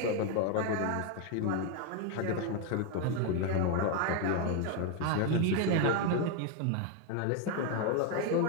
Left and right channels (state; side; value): different; both; correlation 0.01